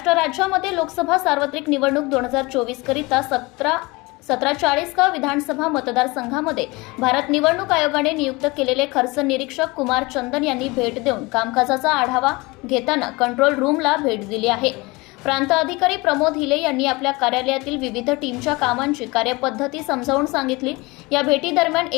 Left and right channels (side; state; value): right; quieter; 23.9 dB